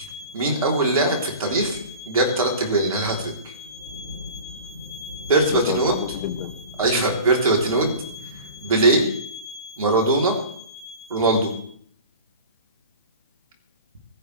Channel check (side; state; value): both; inverted; correlation -0.38